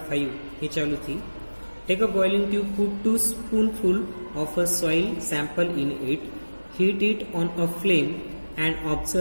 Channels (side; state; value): both; inverted; correlation -1.00